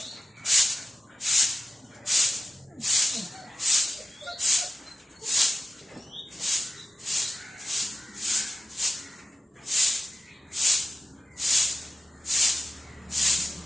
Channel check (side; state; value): both; normal; correlation 0.92